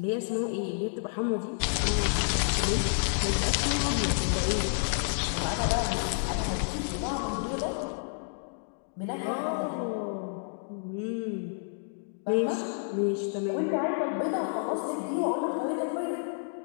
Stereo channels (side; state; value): right; silent; digital silence